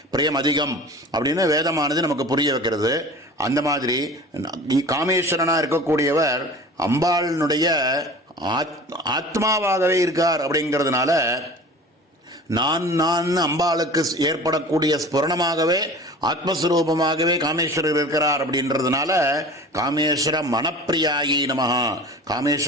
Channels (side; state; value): both; normal; correlation 0.40